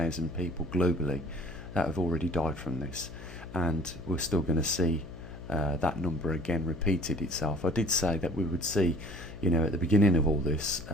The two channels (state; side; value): noise; left; hum, 14 dB below the sound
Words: people globally that have already died from this, and we're still going to see that number again repeated itself. I did say that we would see, you know, at the beginning of all this,